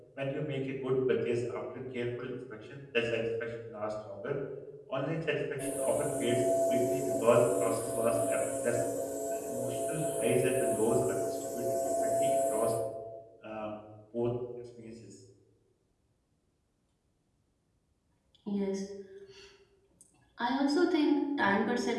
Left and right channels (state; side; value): identical; both; correlation 1.00